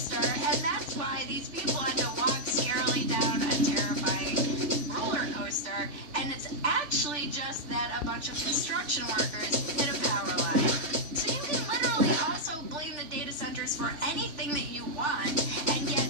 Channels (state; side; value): late; left; 3.4 ms